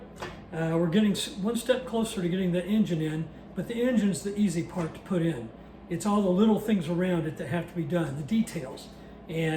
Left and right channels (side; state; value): both; identical; correlation 1.00